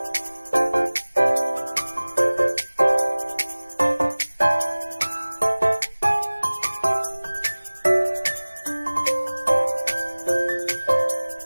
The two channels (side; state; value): both; inverted; correlation -1.00